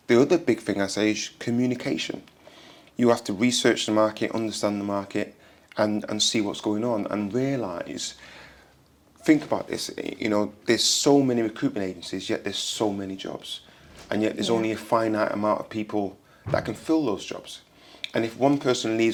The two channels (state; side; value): identical; both; correlation 1.00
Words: The other big thing I say is communication. You have to research the market, understand the market, and see what's going on, and realise, think about this, there's so many recruitment agencies, yet there's so many jobs. And yet there's only a finite amount of people that can fill those jobs. And if one person